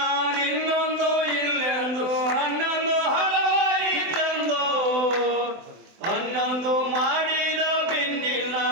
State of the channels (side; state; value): left; late; 24 ms